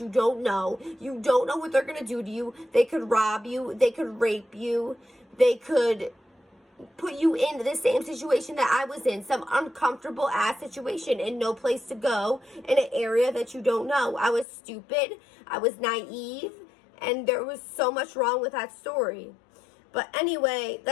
you don't know. You don't know what they're going to do to you. They could rob you. They could rape you. They could put you in the same situation that I was in, some uncomfortable ass situation and no place to go in an area that you don't know. I was stupid, I was naive, and there was so much wrong with that story. But anyway,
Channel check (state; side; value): drops out; right; at 14.5 s